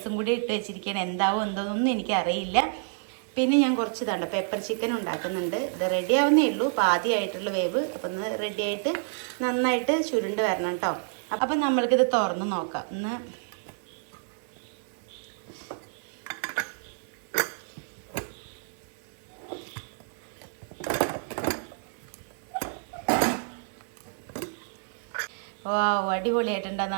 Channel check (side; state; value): left; silent; 57 dB below the other